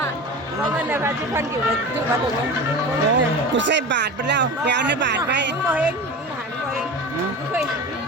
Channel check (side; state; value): both; normal; correlation 0.31